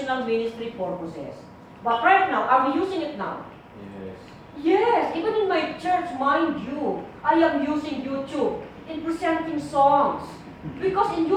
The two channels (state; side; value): identical; both; correlation 1.00